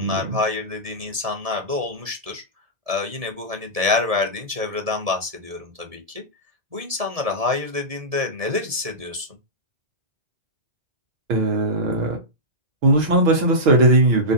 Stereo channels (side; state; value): left; late; 1.7 ms